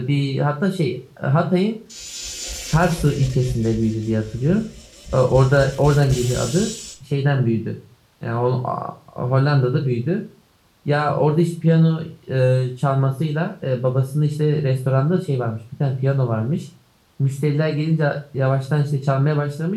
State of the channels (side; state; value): both; identical; correlation 1.00